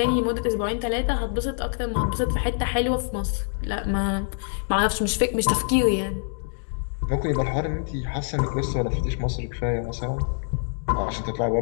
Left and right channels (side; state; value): right; silent; digital silence